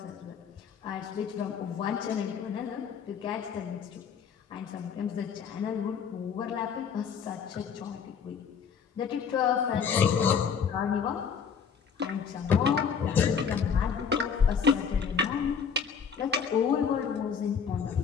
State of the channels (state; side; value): quieter; right; 6.8 dB